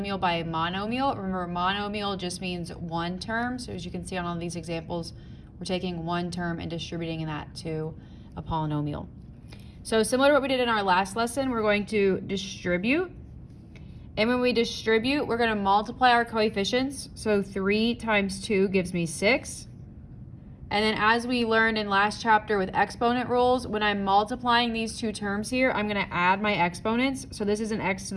by a monomial. Remember, monomial just means one term. So as you can see on all these examples, we're taking one term and distributing that to a polynomial. So similar to what we did in our last lesson, we're going to distribute. And when we distribute, we're going to multiply our coefficients. So 3 times 2 gives me 6. And then as we learned in last chapter with exponent rules, when I'm multiplying these two terms here, I'm going to add my exponents. So this is an x to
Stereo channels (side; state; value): both; identical; correlation 1.00